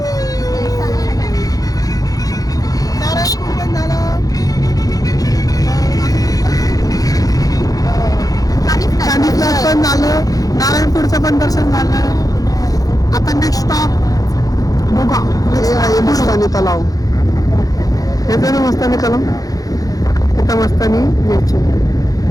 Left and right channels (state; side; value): late; right; 0.17 ms